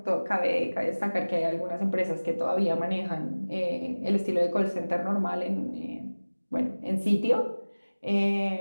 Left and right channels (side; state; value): both; inverted; correlation -1.00